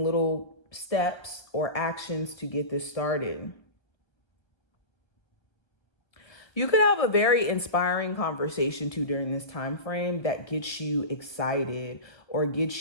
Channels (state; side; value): late; right; 1.1 ms